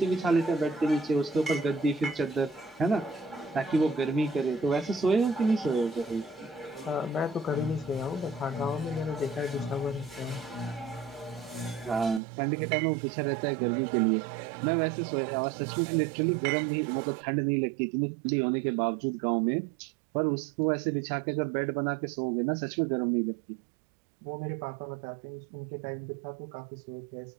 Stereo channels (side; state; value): left; drops out; at 12.2 s